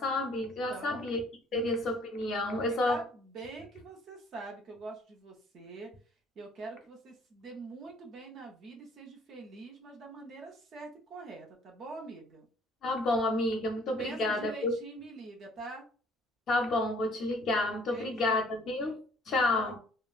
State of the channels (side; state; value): both; normal; correlation 0.58